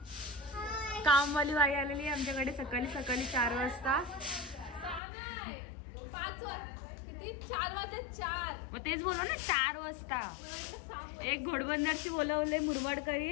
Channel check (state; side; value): drops out; right; at 5.0 s